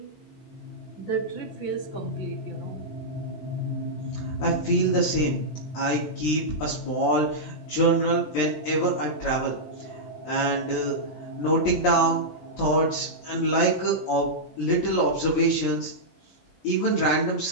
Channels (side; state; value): right; late; 20 ms